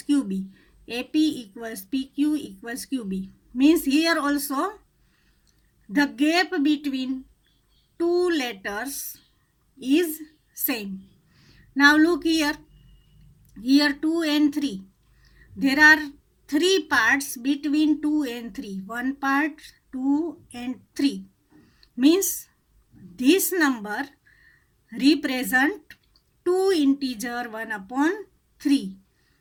QB. AP equals PQ equals QB means here also the gap between two letters is same. Now look here 2 and 3. There are 3 parts between 2 and 3. One part, 2 and 3 means this number represent 2 integer 1 upon 3.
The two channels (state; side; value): identical; both; correlation 1.00